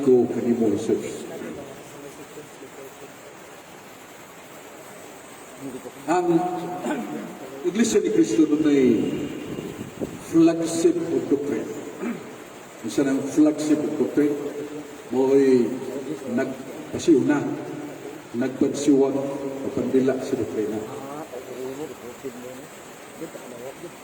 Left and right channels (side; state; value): both; identical; correlation 1.00